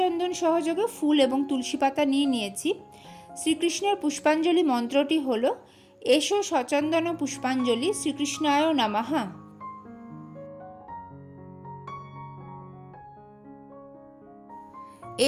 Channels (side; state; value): both; identical; correlation 1.00